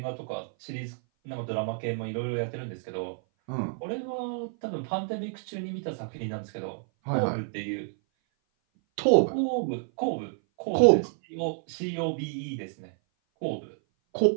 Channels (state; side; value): silent; left; 56 dB below the other